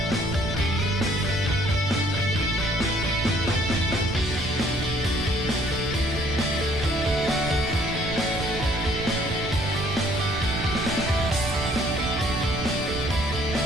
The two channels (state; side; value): noise; right; rumble, 7 dB below the sound